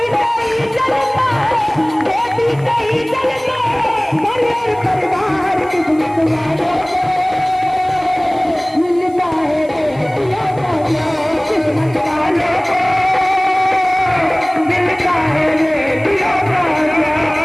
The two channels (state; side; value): noise; right; hiss, 28 dB below the sound